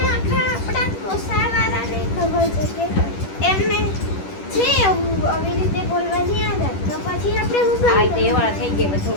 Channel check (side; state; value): right; late; 10 ms